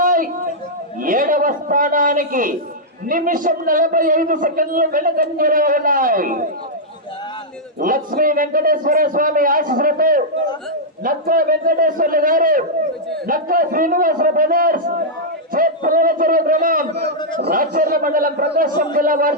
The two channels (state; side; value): normal; both; correlation -0.08